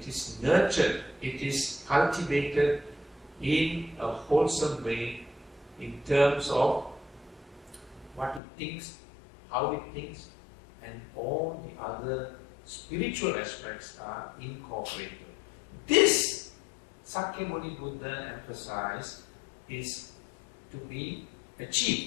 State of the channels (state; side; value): drops out; right; at 8.4 s